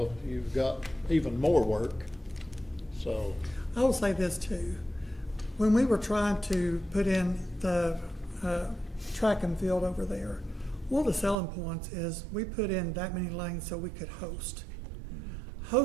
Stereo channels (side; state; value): left; drops out; at 11.4 s